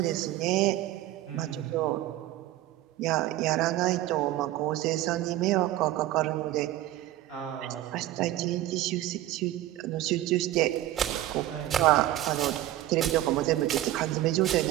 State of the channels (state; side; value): quieter; left; 14.7 dB